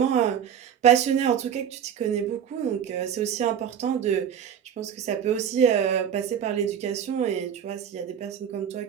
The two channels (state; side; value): quieter; left; 8.7 dB